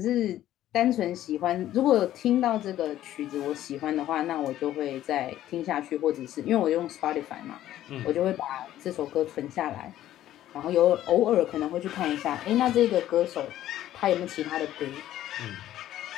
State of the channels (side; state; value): right; quieter; 13.0 dB